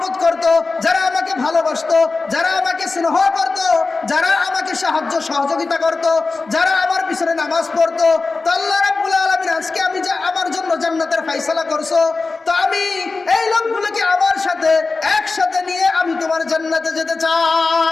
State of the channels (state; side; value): quieter; right; 3.9 dB